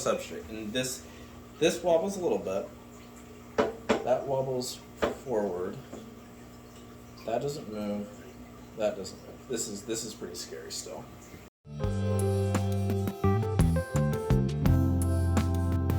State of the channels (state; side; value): identical; both; correlation 1.00